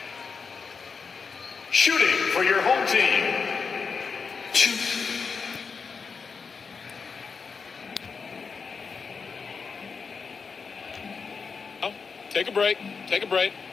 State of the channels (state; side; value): quieter; right; 5.3 dB